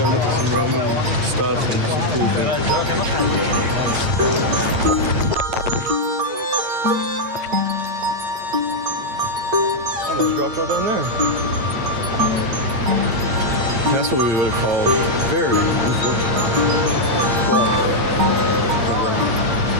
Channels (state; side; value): late; left; 8.7 ms